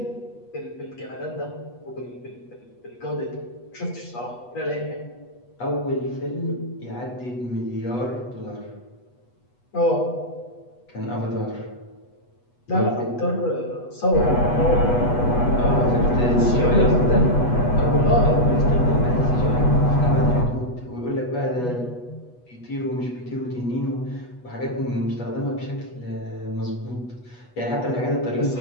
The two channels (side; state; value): right; late; 8.2 ms